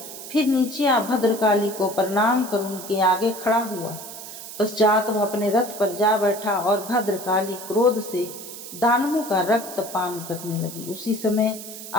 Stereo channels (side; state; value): right; noise; hiss, 12 dB below the sound